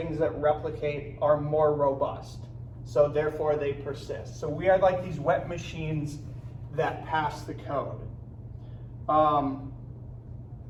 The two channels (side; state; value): both; identical; correlation 1.00